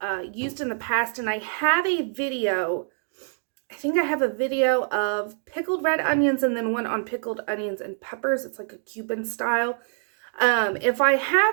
used in the past, and I have a video. I think I have a video of pickled red onions and then one on pickled onions and peppers. It's like a Cuban style. If I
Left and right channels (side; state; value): left; silent; 62 dB below the other